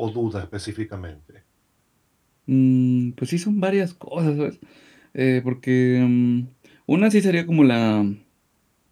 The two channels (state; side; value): identical; both; correlation 1.00